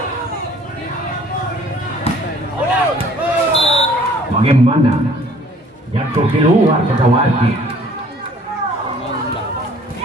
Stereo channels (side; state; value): both; normal; correlation 0.55